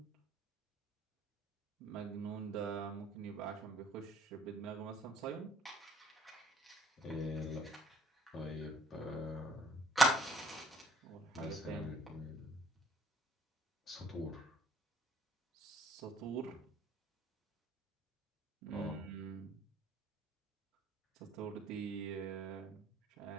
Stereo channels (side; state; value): both; normal; correlation 0.61